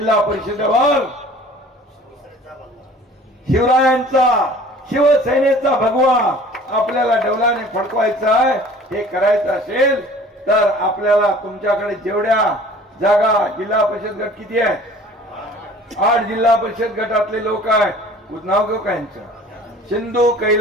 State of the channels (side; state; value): both; normal; correlation 0.48